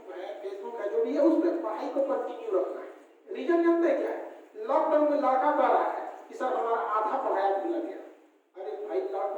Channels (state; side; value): identical; both; correlation 1.00